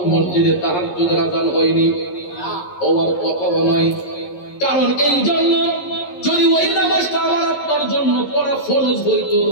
মসজিদে তাহাজ্জুদের আযান হয়নি? হওয়ার কথা নয়। কারণ এই জন্য, যদি ওই নামাজটা আমার আপনার জন্য পড়া ফরজ হইতো,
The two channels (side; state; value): right; late; 11 ms